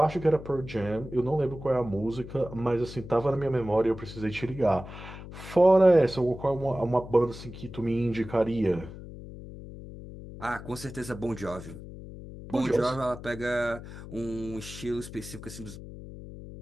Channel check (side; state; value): left; noise; hum, 13 dB below the sound